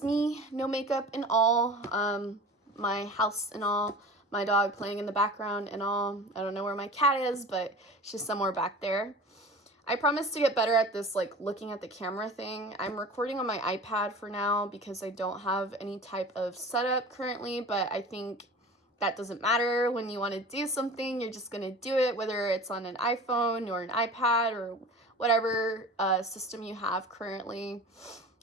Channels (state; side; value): normal; both; correlation 0.38